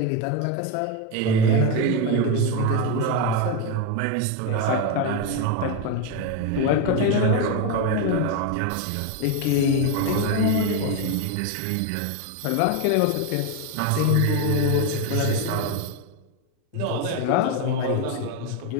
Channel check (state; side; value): different; both; correlation 0.02